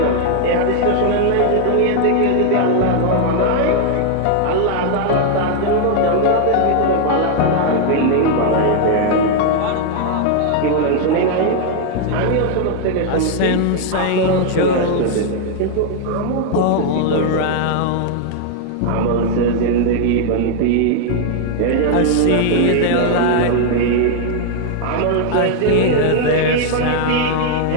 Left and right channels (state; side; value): different; both; correlation 0.00